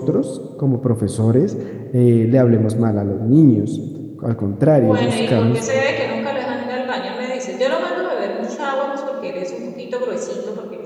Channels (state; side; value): identical; both; correlation 1.00